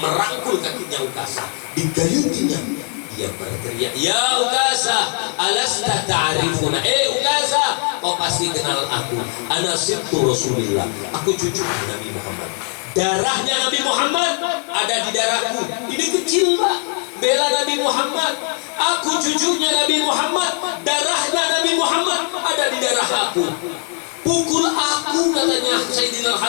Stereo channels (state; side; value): quieter; right; 37.5 dB